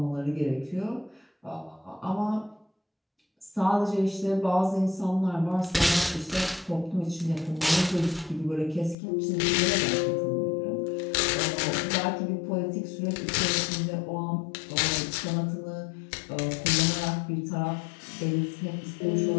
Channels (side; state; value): right; drops out; at 9.0 s